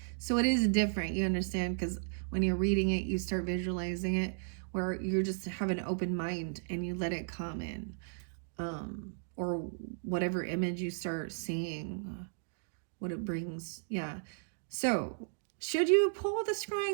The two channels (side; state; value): left; silent; digital silence